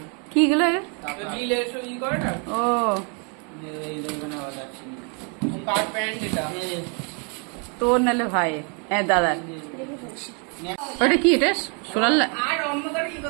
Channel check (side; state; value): left; quieter; 37.1 dB